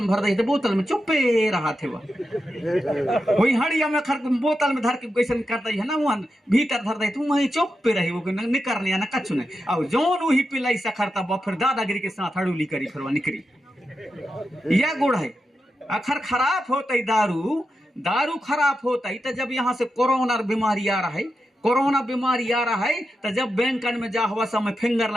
में भर दे, बोतल में चुप्पे रहा थे, वही हड़िया में खर बोतल में धर के कैसे कर दी है ना, वहां भीतर धर दे तू वही चुप्पे रही, वो निकलने ना कछु नहीं। और जोन वही पिलाई सखर तब फिर दादागिरी के साथ हड़ूली करी, फिर वह निकली। यह गुड़ है। अखर खराब होता दारू खराब होता ही तो जब यहाँ से कोरोना बीमारी आ रहा है, कोरोना बीमारी आ रहा है तो जब बैंक में जा हुआ समय फिंगर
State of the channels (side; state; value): both; normal; correlation 0.89